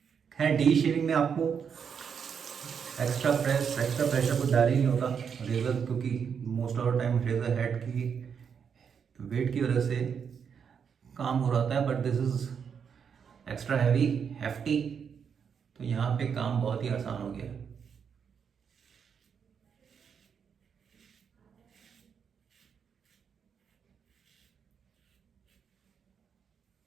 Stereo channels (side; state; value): left; quieter; 7.0 dB